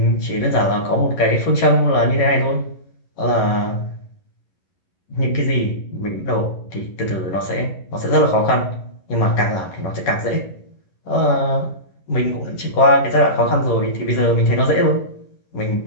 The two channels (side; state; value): right; late; 11 ms